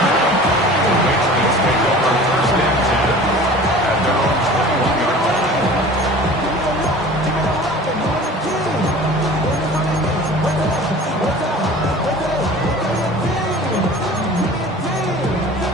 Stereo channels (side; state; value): both; normal; correlation 0.42